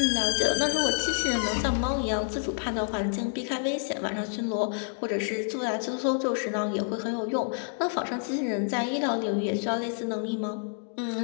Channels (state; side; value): silent; right; digital silence